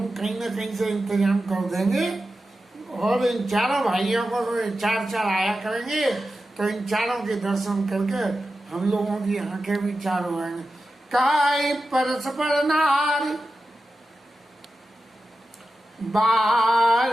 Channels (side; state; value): both; normal; correlation 0.92